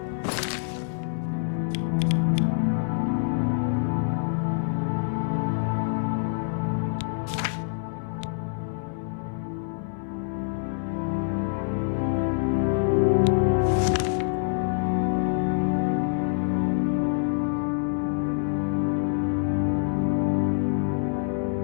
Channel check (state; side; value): silent; right; digital silence